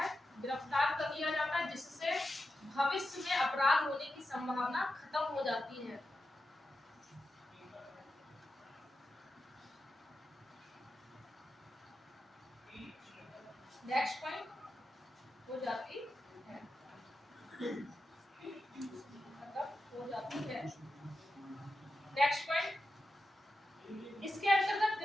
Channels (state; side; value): normal; both; correlation 0.90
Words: गिरफ्तार कर लिया जाता है, जिससे भविष्य में अपराध होने की संभावना खत्म हो जाती है। नेक्स्ट पॉइंट हो जाती है, नेक्स्ट पॉइंट, इसके अंतर्गत